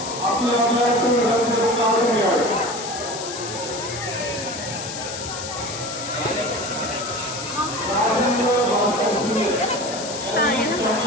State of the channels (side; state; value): left; noise; hiss, 8 dB below the sound